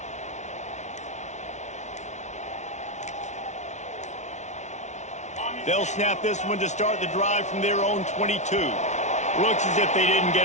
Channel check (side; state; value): right; late; 0.33 ms